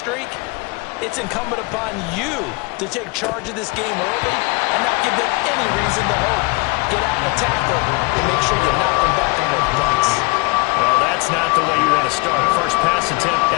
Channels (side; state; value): right; quieter; 27.7 dB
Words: it's incumbent upon you to take charge of this game early and not give them any reason to hope. Get out and tackle and make sure you knock them back on their butts. Well, that's not the way you want to start. First pass attempt